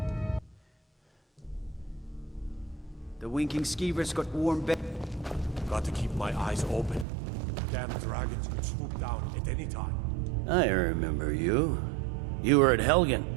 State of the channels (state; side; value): drops out; left; at 7.1 s